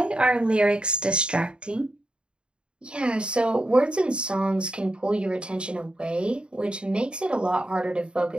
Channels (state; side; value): late; left; 0.052 ms